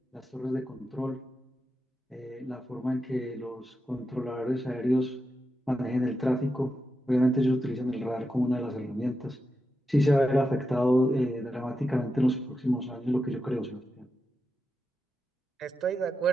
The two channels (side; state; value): both; normal; correlation 0.88